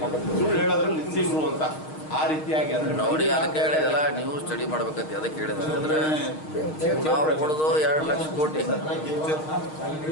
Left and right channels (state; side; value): late; right; 6.4 ms